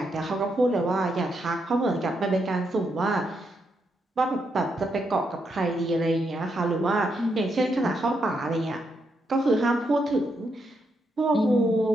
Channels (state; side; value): normal; both; correlation 0.80